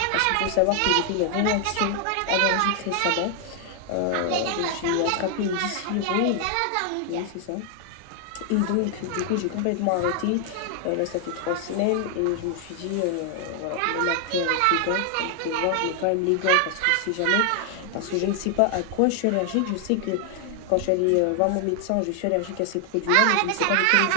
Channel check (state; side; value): different; both; correlation 0.00